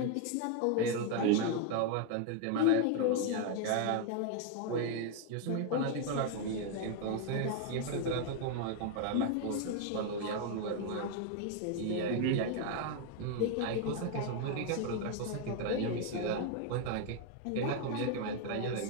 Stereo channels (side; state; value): both; different; correlation 0.01